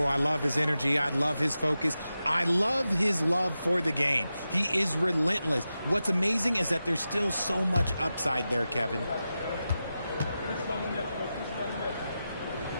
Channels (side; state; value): both; inverted; correlation -0.92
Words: I love his energy. I love his focus. I love his love for the game. He is relentless. What's amazing is that there's still so much upside there, Kevin.